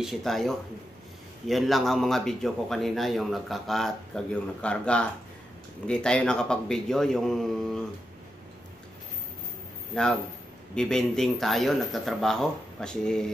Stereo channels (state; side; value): normal; both; correlation 0.87